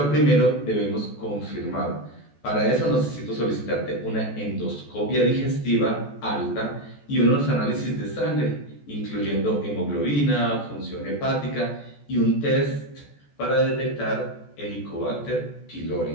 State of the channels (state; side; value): late; right; 14 ms